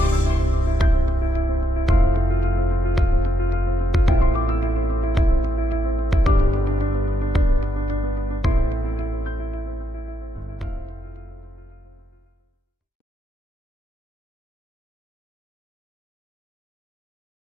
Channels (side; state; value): both; normal; correlation 0.79